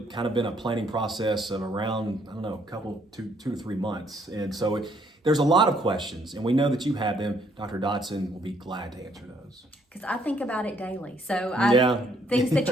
kind of been a planning process of around, I don't know, two to 3 months. And so there's a lot of questions, and we know that you have them. Dr. Dodson will be glad to answer those. Because I think about it daily. So things that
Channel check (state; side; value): normal; both; correlation 0.68